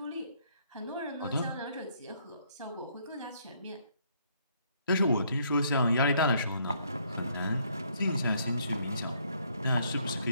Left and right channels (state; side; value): inverted; both; correlation -0.68